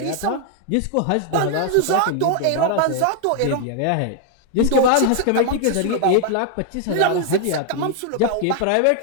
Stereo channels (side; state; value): both; different; correlation 0.00